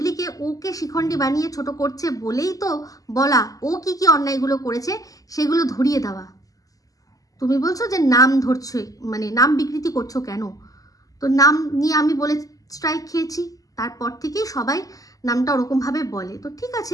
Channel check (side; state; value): right; late; 0.17 ms